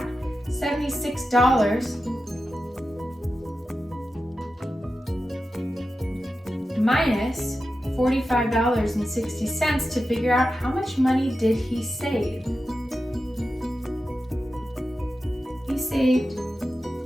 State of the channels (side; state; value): both; normal; correlation 0.92